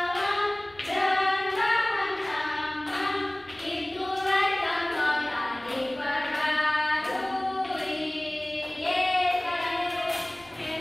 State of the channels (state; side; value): noise; left; rumble, 28 dB below the sound